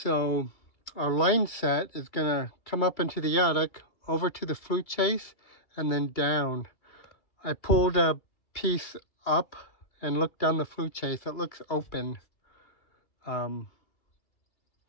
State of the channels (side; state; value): right; late; 2.2 ms